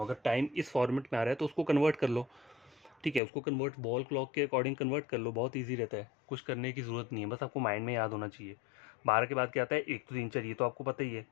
अगर टाइम इस फॉर्मेट में आ रहा है तो उसको कन्वर्ट कर लो, ठीक है, उसको कन्वर्ट वॉल क्लॉक के अकॉर्डिंग कन्वर्ट कर लो, बहुत इजी रहता है, कुछ करने की ज़रूरत नहीं है, बस आपको माइंड में याद होना चाहिए। 12 के बाद क्या आता है 1 तो 3 4, ये तो आपको पता ही है।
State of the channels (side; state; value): right; drops out; at 3.2 s